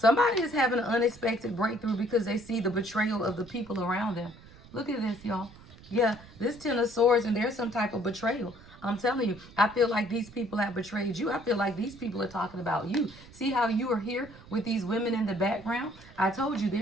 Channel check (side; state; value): right; noise; rumble, 21 dB below the sound